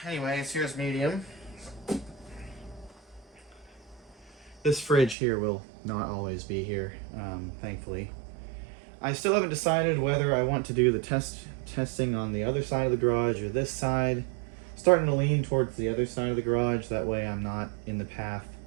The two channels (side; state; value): left; drops out; at 5.2 s